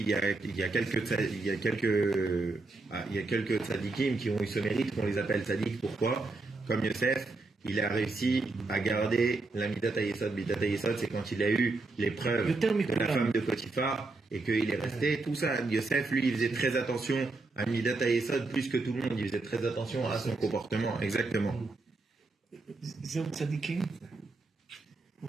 il y a quelques tzadikim qui ont eu ce mérite qu'on les appelle tzadik. Pourquoi? Comme Yosef, il a réussi à garder la Midat HaYesod. Midat HaYesod, c'est quand il a eu l'épreuve de la femme de Potiphar et qu'il est resté. Tout ça, Yosef, lui, il faisait très attention à Midat HaYesod plus que tout le monde. Il faisait très attention à son comportement. Exactement. זהו צדיקים?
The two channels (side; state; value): left; quieter; 3.4 dB